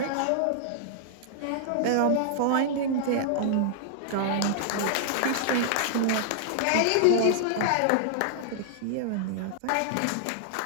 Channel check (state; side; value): different; both; correlation -0.01